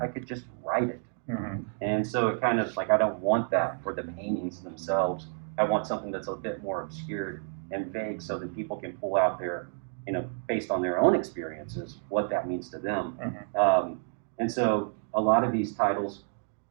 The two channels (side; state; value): left; silent; 58 dB below the other